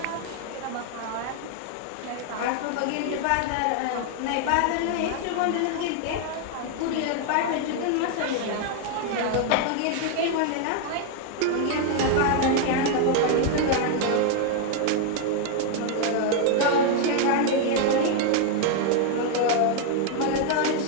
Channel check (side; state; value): both; different; correlation 0.00